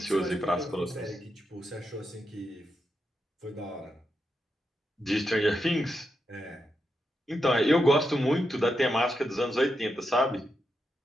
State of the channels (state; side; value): normal; both; correlation 0.85